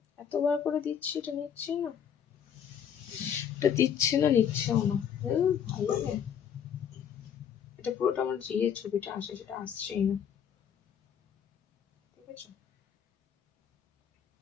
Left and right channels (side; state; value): right; quieter; 8.4 dB